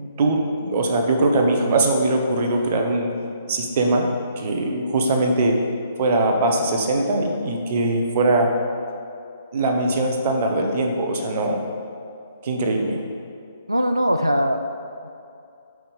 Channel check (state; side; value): inverted; both; correlation -0.66